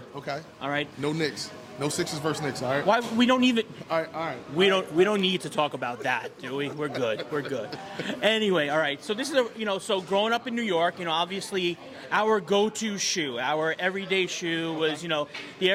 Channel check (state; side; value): identical; both; correlation 1.00